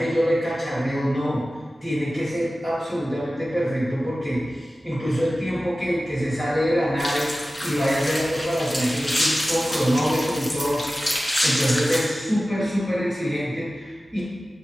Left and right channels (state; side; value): normal; both; correlation 0.95